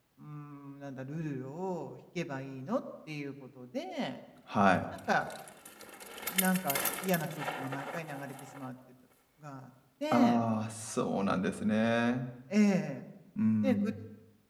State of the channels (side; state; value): both; identical; correlation 1.00